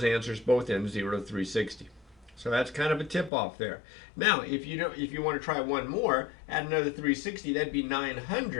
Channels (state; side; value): drops out; right; at 3.3 s